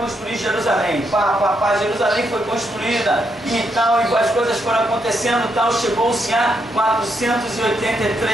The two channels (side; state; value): both; normal; correlation 0.78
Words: Jerusalém, Jerusalém foi construída e tal, e as coisas foram acontecendo, tal, chegou-se a